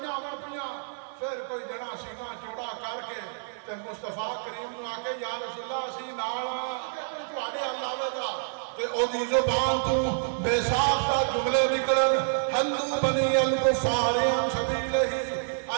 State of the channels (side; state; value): left; silent; 59 dB below the other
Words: امن پیاں، پھر کوئی جنا سینہ چوڑا کر کے تے مصطفیٰ کریم نو آکے یا رسول اللہ اسی نال تواڈے اللہ ودا تے او دی زبان تو بے ساختہ جملے نکلن ہندو بنی الکفار عن سبیلہ